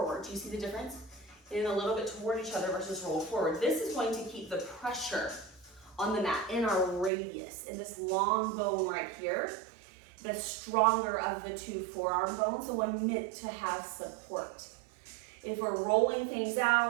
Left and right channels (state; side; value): drops out; left; at 7.1 s